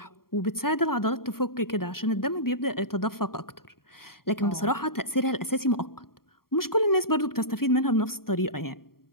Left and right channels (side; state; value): right; late; 0.93 ms